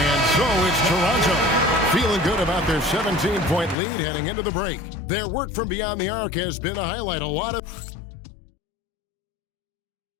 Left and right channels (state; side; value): drops out; right; at 3.8 s